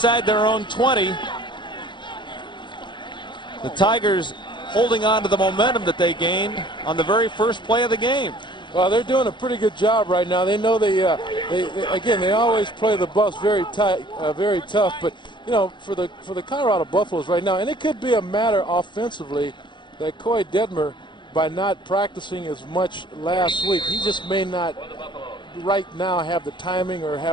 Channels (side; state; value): right; late; 0.23 ms